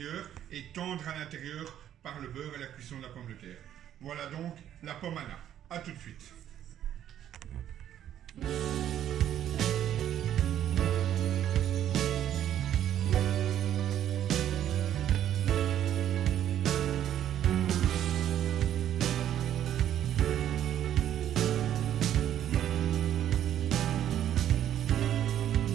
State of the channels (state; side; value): quieter; left; 10.9 dB